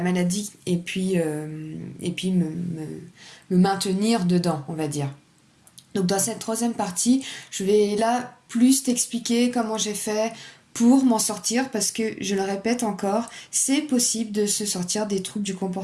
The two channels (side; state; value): both; identical; correlation 1.00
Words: et puis me maintenir dedans, on va dire. Donc dans cette troisième partie, je vais là plus t'expliquer comment j'ai fait pour m'en sortir, parce que, je le répète encore, c'est possible de se sortir des troubles du